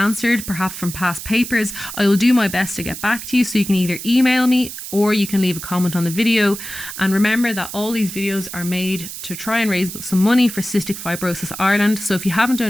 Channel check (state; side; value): noise; right; hiss, 10 dB below the sound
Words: perhaps from past papers, I will do my best to get back to you. So you can either email me or you can leave a comment on the video. And remember that all these videos are made to try and raise some money for Cystic Fibrosis Ireland. So if you haven't